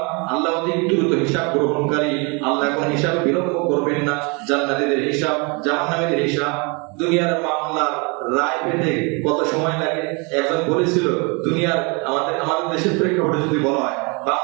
আল্লাহ অধিক দ্রুত হিসাব গ্রহণকারী। আল্লাহ কোন হিসাব বিলম্ব করবেন না। জান্নাতীদের হিসাব, জাহান্নামীদের হিসাব। দুনিয়ার মামলার রায় পেতে কত সময় লাগে? একজন বলেছিল, দুনিয়ার আমাদের দেশের প্রেক্ষাপটে যদি বলা হয়,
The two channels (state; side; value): quieter; left; 30.8 dB